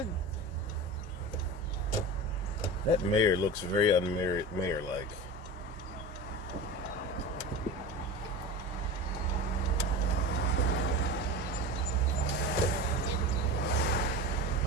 That mayor looks very mayor-like.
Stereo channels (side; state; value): both; normal; correlation 0.29